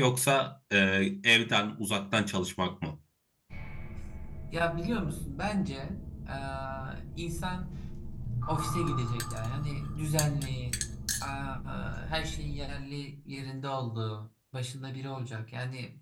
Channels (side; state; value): both; identical; correlation 1.00